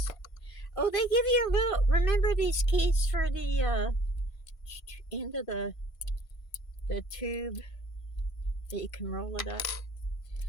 Oh, they give you a little, remember these keys for the end of the tube that you can roll it up?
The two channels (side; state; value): right; late; 1.5 ms